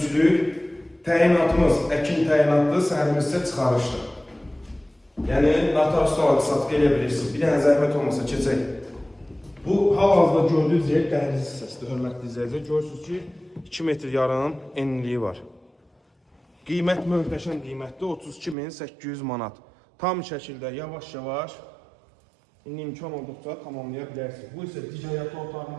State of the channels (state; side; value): drops out; left; at 18.6 s